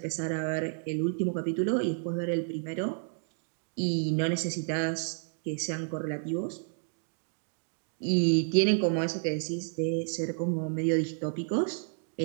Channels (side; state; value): left; silent; digital silence